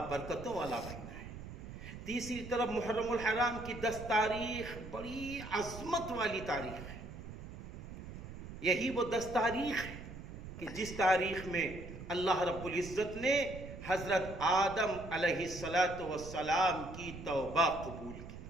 برکتوں والا مہینہ ہے۔ تیسری طرف محرم الحرام کی 10 تاریخ بڑی عظمت والی تاریخ ہے۔ یہی وہ 10 تاریخ ہے کہ جس تاریخ میں اللہ رب العزت نے حضرت آدم علیہ السلام کی توبہ قبول کی۔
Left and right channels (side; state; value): right; noise; rumble, 11 dB below the sound